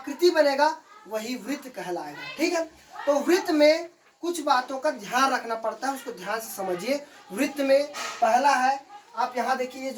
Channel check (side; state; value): both; identical; correlation 1.00